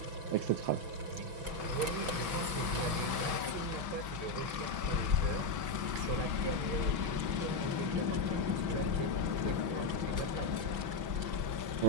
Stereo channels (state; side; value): late; left; 6.3 ms